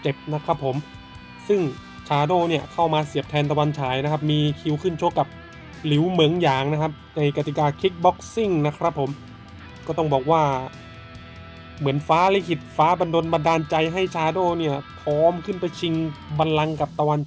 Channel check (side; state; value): both; identical; correlation 1.00